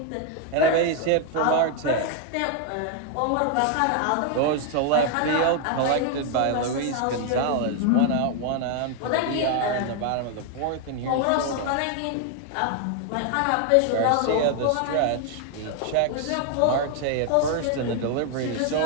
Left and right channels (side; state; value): both; different; correlation 0.00